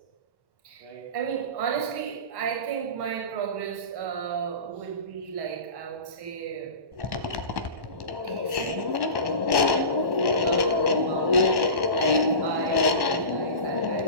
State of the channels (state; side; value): late; left; 1.1 ms